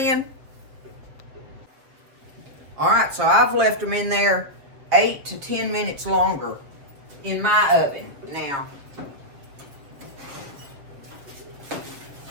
All right, so I've left them in there 8 to 10 minutes longer in my oven. Now,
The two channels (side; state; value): left; late; 7.4 ms